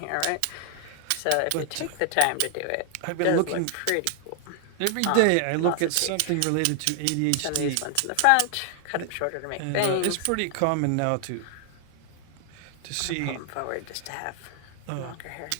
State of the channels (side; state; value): both; different; correlation 0.00